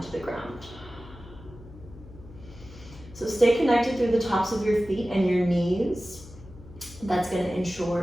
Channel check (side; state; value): left; noise; hum, 18 dB below the sound